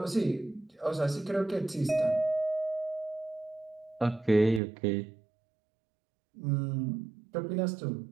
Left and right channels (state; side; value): drops out; left; at 4.6 s